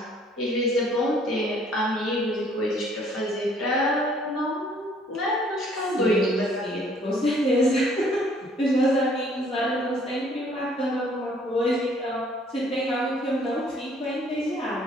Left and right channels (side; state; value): both; normal; correlation 0.60